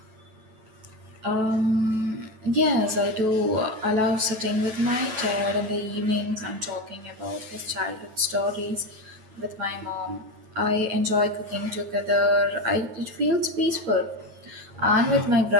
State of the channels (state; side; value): late; left; 9.2 ms